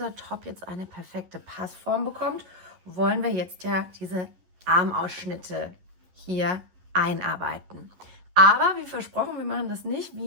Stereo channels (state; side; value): late; left; 11 ms